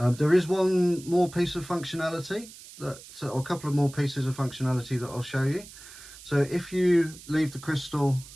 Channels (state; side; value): noise; right; hiss, 18 dB below the sound